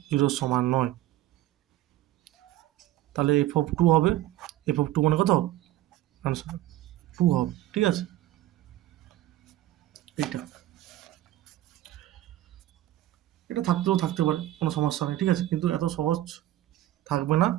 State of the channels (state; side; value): quieter; left; 14.5 dB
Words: 0 সমান নয়, তাহলে এফ অফ 2 হবে, এফ অফ 2 মানে কত, আনসার 2 হবে, ঠিক আছে, এইটা এটা থাকতেও থাকতে পারে, কোনো সমস্যা নেই, ঠিক আছে, কিন্তু এত সহজ থাকবে না।